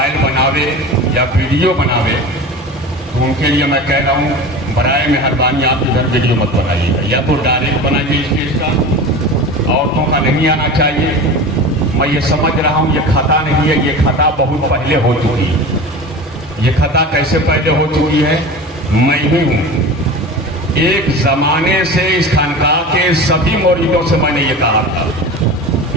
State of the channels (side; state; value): both; normal; correlation 0.32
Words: बनावे या वीडियो बनावे तो उनके लिए मैं कह रहा हूँ, बराए मेहरबानी आप इधर वीडियो मत बनाइएगा, या तो डायरेक्ट बनाइए स्टेज का। औरतों का नहीं आना चाहिए। मैं ये समझ रहा हूँ ये खता नहीं है, ये खता बहुत पहले हो चुकी है। ये खता कैसे पहले हो चुकी है? मैं ही हूँ। एक जमाने से इस खानकाह के सभी मुरीदों से मैंने ये कहा था,